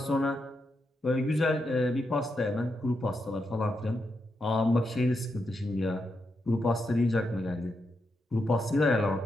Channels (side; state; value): both; normal; correlation 0.84